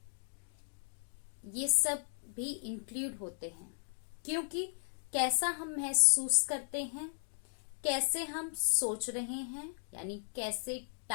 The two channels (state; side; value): silent; right; digital silence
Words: ये सब भी इंक्लूड होते हैं, क्योंकि कैसा हम महसूस करते हैं, कैसे हम सोच रहे हैं, यानी कैसे